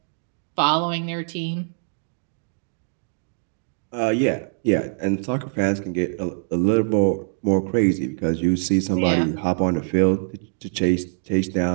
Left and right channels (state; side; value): silent; left; digital silence